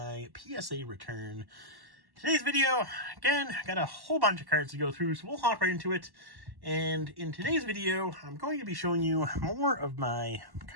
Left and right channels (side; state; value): left; late; 1.1 ms